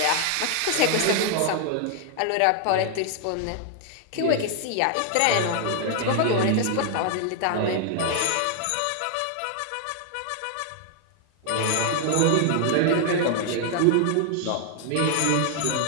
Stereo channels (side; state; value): both; different; correlation 0.00